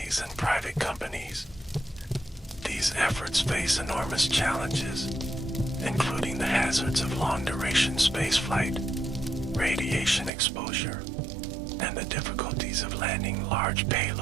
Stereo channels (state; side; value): drops out; left; at 10.3 s